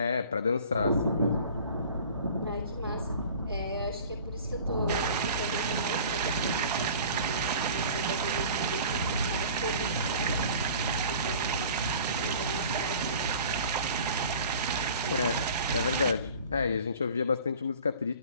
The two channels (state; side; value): inverted; both; correlation -0.44